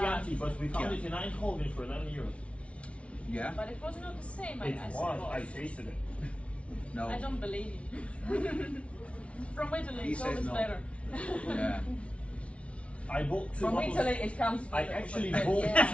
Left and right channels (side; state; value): right; late; 0.062 ms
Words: but we found Yeah. it in Eindhoven for €11. Yeah? But it was not the same. It I was. suppose. I tasted it. No. I don't believe you. From Italy, He it's says always no. better. Yeah. I bought two From bottles. Italy, it comes. With I a- actually with- bought yeah.